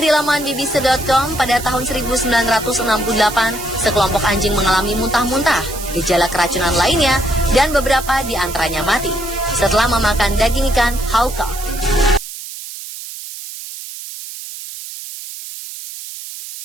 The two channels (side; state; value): right; noise; hiss, 11 dB below the sound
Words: laman bbc.com, pada tahun 1968, sekelompok anjing mengalami muntah-muntah, gejala keracunan lainnya, dan beberapa di antaranya mati setelah memakan daging ikan haukart.